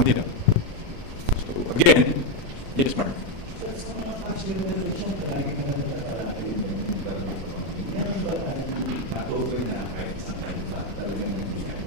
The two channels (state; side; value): late; left; 36 ms